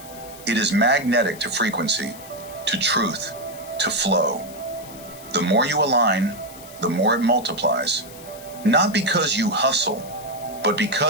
It is magnetic to frequency, to truth, to flow. The more you align, the more it multiplies. Not because you hustle, but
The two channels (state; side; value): noise; left; hiss, 18 dB below the sound